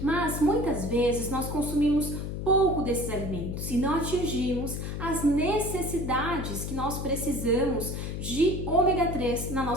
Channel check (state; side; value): noise; left; hum, 5 dB below the sound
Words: Mas muitas vezes nós consumimos pouco desses alimentos e não atingimos as necessidades que nós precisamos de ômega 3 na